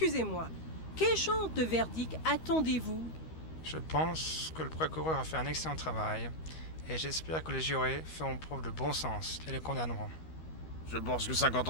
quel genre de verdict attendez-vous? Je pense que le procureur a fait un excellent travail et j'espère que les jurés feront preuve de bon sens et les condamneront. Je pense que 50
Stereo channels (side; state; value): right; late; 13 ms